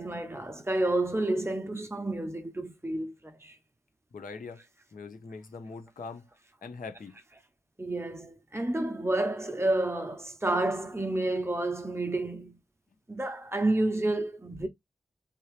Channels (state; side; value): normal; both; correlation 0.89